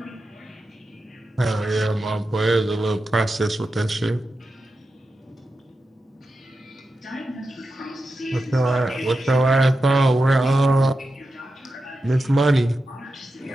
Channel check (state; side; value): normal; both; correlation 0.90